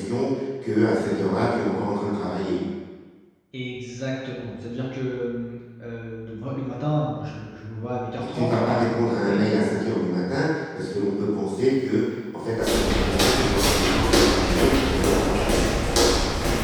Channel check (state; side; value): identical; both; correlation 1.00